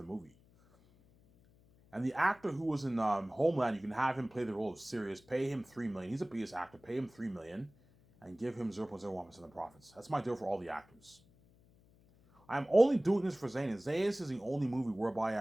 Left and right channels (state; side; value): noise; left; hum, 29 dB below the sound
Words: movie. And the actor who was in Homeland, you can have him play the role of Sirius, pay him $3 million. He's a BS actor, pay him $3 million, and give him 0.01% of the profits. That's my deal for all the actors. I'm only doing this for Zanus. Zanus is the only movie whereby